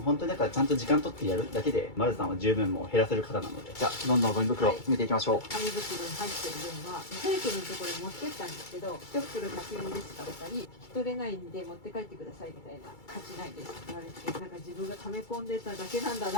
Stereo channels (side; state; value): right; late; 2.3 ms